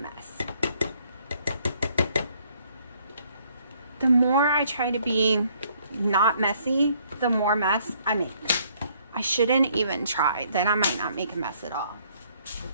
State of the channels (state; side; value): inverted; both; correlation -0.65